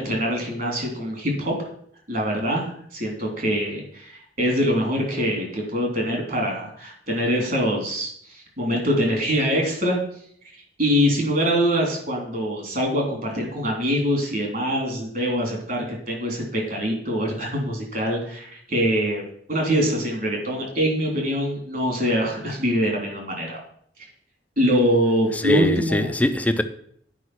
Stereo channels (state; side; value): normal; both; correlation 0.41